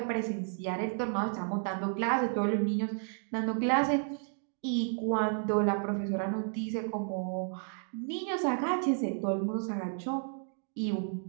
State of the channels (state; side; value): silent; left; 56 dB below the other